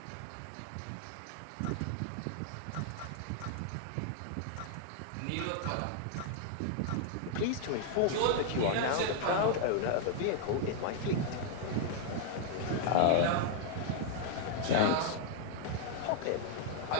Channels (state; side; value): different; both; correlation -0.01